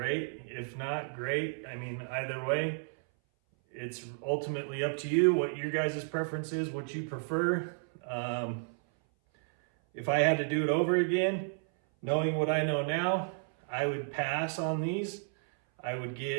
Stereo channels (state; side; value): silent; left; 56 dB below the other